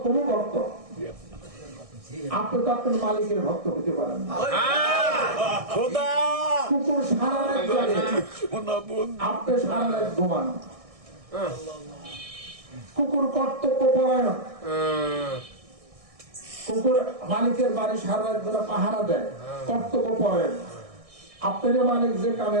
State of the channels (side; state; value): left; late; 1.6 ms